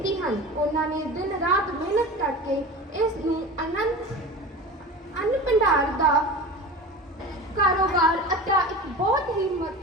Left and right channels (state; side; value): normal; both; correlation 0.32